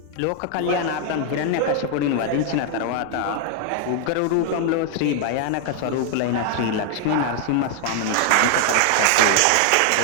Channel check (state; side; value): different; both; correlation 0.00